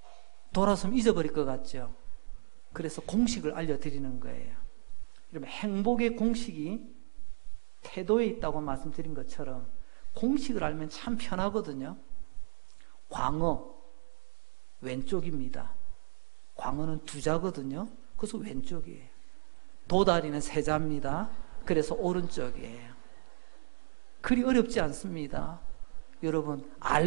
돌아서면 잊어버릴 것 같죠? 그래서 공식을 알려드리는 거예요. 그러면 행복의 공식이 태도에 있다고 말씀드린 것처럼 공식을 알면 참 편하거든요. 광어 왼쪽입니다. 광어는 두자거든요. 그래서 왼쪽이에요. 도다리는 세자입니다. 그래서 오른쪽이에요. 그리 어렵지 않습니다. 여러분,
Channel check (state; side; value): silent; left; digital silence